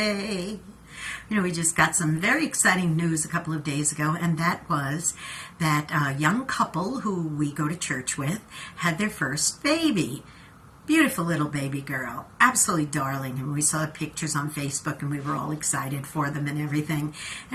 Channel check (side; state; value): both; identical; correlation 1.00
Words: We just got some very exciting news a couple of days ago, and that was that a young couple who we go to church with had their first baby. Beautiful little baby girl, absolutely darling, and we saw pictures on Facebook and we were all excited for them and everything,